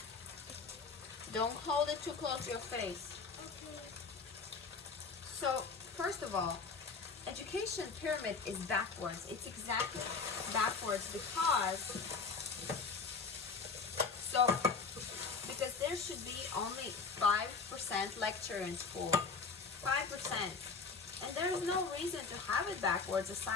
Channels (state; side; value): quieter; right; 4.8 dB